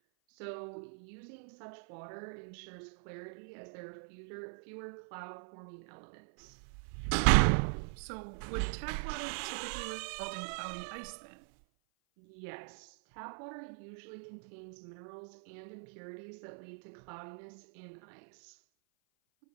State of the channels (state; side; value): silent; left; 51 dB below the other